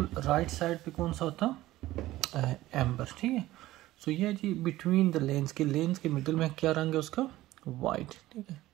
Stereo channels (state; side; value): quieter; left; 16.3 dB